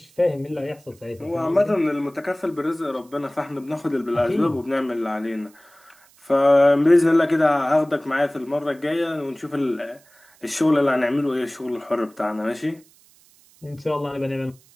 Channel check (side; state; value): right; noise; hiss, 29 dB below the sound